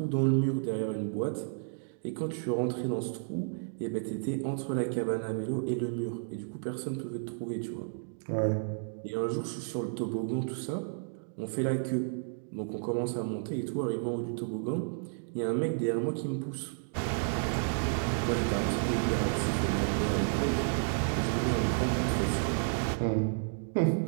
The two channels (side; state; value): left; silent; digital silence